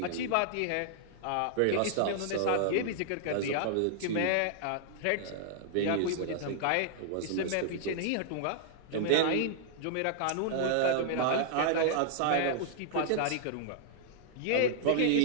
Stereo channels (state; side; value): different; both; correlation -0.01